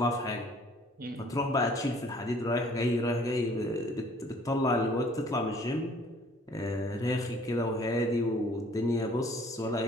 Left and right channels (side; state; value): both; normal; correlation 0.56